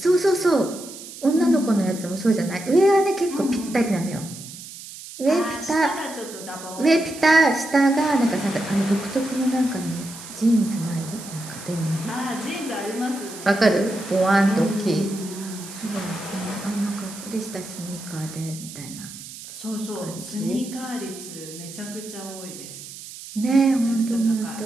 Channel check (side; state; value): right; noise; hiss, 14 dB below the sound